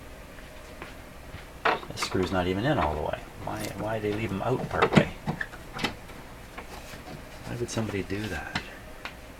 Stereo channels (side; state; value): both; identical; correlation 1.00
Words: This screw's not even in all the way. Why did they leave them out part way? Why would somebody do that?